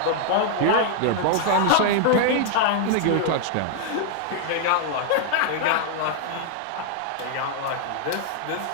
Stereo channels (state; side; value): different; both; correlation 0.00